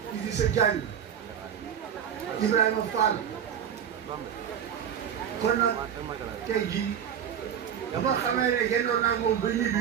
Idrissa Diagne Ibrahima Fall kon nag tey jii dama xamee ne génnoon naa moom ba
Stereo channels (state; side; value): quieter; left; 8.7 dB